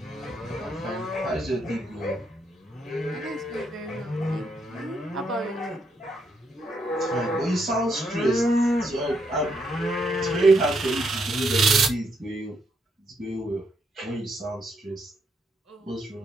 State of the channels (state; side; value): normal; both; correlation 0.76